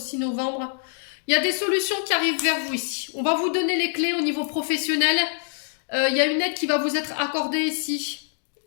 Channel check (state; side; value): silent; right; digital silence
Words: novembre. Il y a des solutions qui arrivent vers vous ici. On va vous donner les clés au niveau professionnel. Il y a une aide qui va vous être accordée ici.